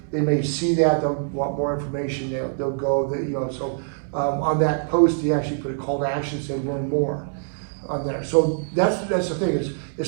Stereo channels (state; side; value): silent; left; digital silence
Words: they may see that, they'll want more information, they'll go, so on that post, he actually put a call to action, say learn more on there. So that's the thing, is